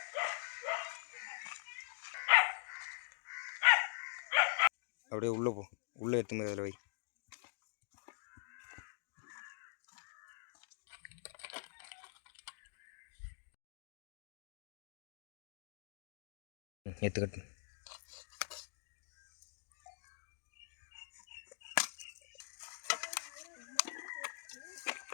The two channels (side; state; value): right; silent; digital silence